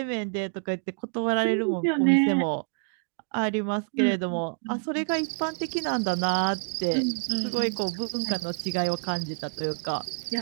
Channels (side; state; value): left; silent; digital silence